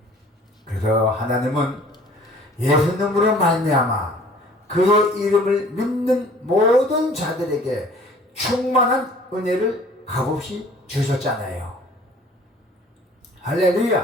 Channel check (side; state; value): both; normal; correlation 0.51